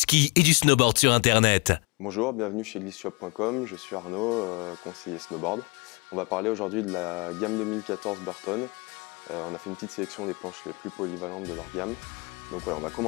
et du snowboard sur Internet. Bonjour, bienvenue chez Glissshop.com, je suis Arnaud, conseiller snowboard. On va parler aujourd'hui de la gamme 2014 Burton. On a fait une petite sélection des planches les plus polyvalentes de leur gamme. Donc voilà, on va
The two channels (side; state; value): right; quieter; 29.0 dB